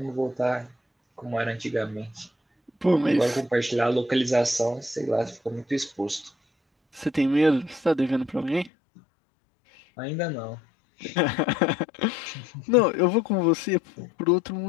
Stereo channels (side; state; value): right; drops out; at 8.7 s